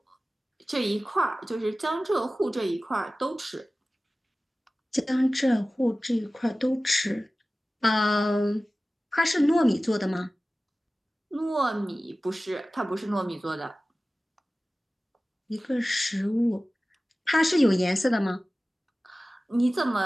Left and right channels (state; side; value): normal; both; correlation 0.97